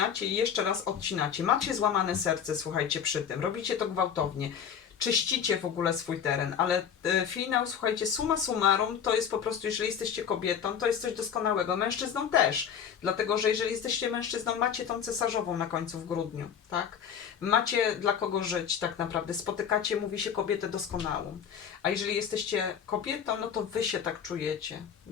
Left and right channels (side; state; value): right; quieter; 7.9 dB